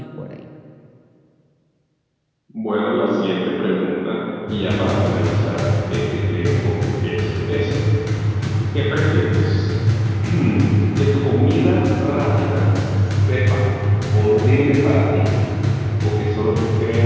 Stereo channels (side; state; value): both; identical; correlation 1.00